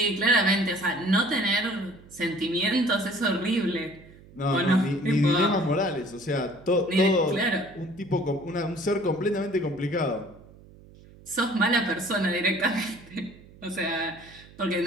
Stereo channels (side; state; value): right; noise; hum, 22 dB below the sound